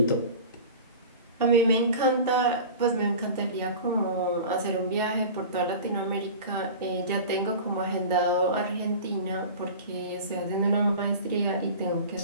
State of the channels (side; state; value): both; inverted; correlation -0.36